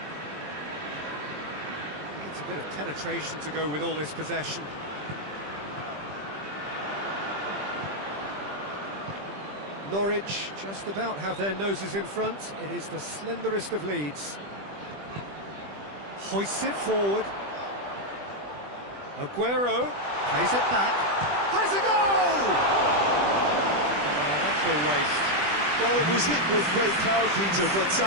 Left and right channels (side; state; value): left; late; 20 ms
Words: Needs a bit of penetration to go with all this possession. Norwich just about have their noses in front. It is the slenderest of leads. Hoists it forward. Aguero plays it back. Has a goal! Oh, that's a waste. Well, it was hit with great power, Peter, but